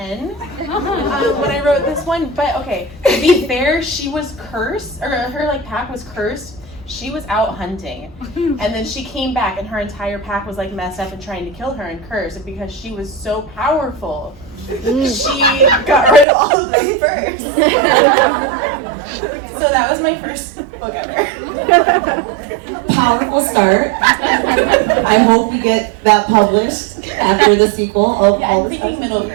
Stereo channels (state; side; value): drops out; left; at 16.2 s